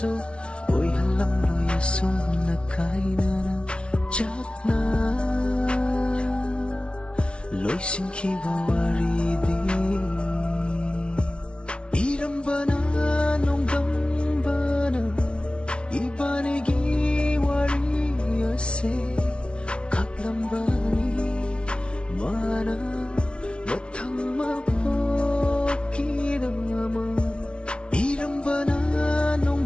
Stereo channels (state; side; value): late; right; 0.058 ms